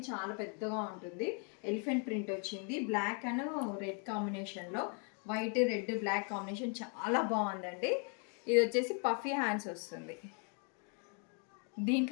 చాలా పెద్దగా ఉంటుంది. ఎలిఫెంట్ ప్రింట్ వచ్చింది, బ్లాక్ అండ్ రెడ్ కాంబినేషన్లో. వైట్ రెడ్ బ్లాక్ కాంబినేషన్ చాలా బాగుందండి. ఇది వచ్చేసి పఫీ హ్యాండ్స్ వస్తుంది.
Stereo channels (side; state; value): right; quieter; 39.4 dB